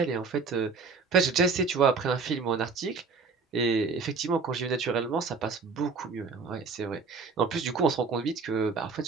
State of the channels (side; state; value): left; quieter; 4.7 dB